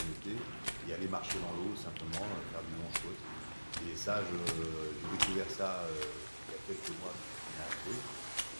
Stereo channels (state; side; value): inverted; both; correlation -1.00